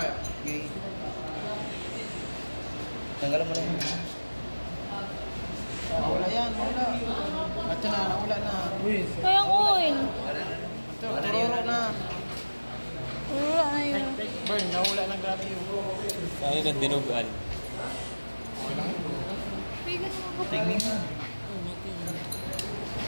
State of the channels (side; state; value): both; inverted; correlation -1.00